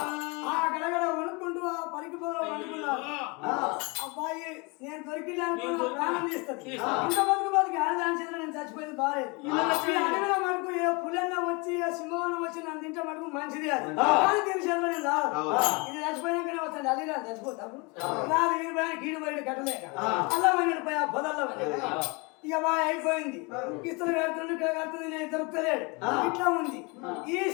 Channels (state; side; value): quieter; right; 28.9 dB